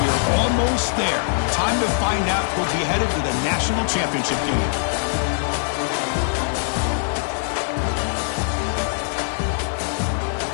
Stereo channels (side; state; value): right; silent; digital silence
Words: We are almost there. Time to find out who'll be headed to the national championship game.